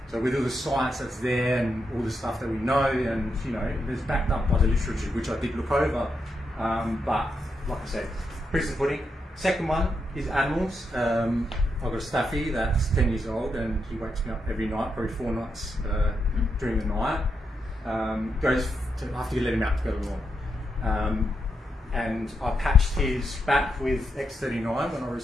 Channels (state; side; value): normal; both; correlation 0.83